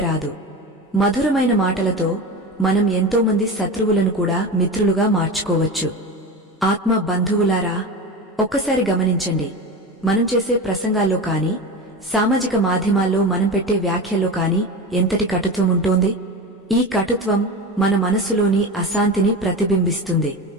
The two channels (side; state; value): both; normal; correlation 0.26